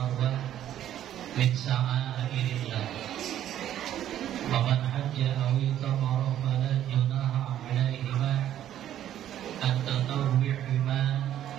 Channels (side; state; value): left; quieter; 11.5 dB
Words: min sa'airillah. Faman hajja aw itamara fala junaha 'alaihima an tatawwi'ima